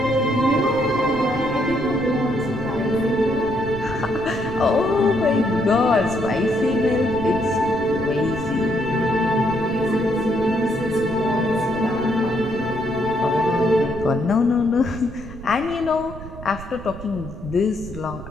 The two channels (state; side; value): noise; right; rumble, 13 dB below the sound